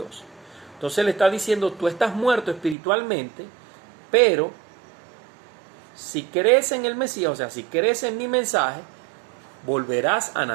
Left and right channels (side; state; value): left; drops out; at 2.8 s